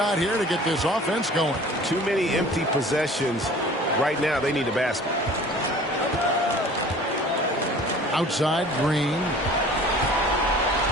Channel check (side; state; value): both; normal; correlation 0.46